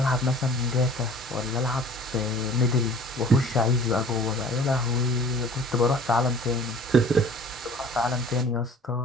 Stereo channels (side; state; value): both; normal; correlation 0.48